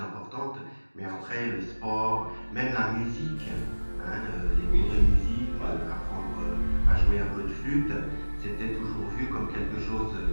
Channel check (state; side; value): inverted; both; correlation -1.00